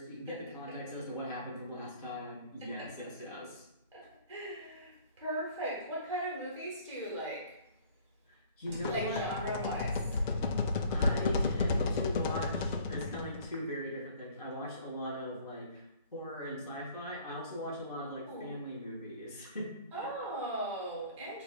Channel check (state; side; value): inverted; both; correlation -0.53